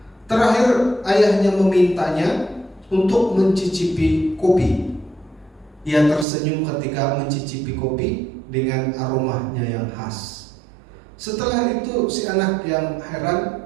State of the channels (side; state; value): left; drops out; at 6.2 s